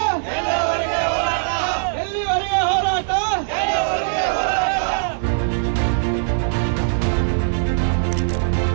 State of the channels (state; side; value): silent; left; 65 dB below the other